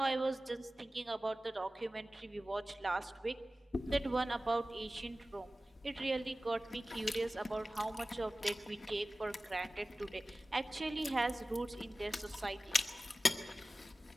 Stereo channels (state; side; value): normal; both; correlation 0.96